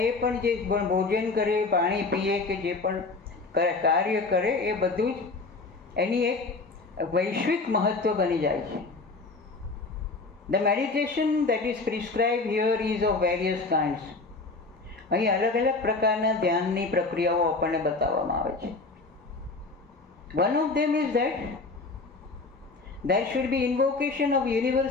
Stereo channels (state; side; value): quieter; right; 3.7 dB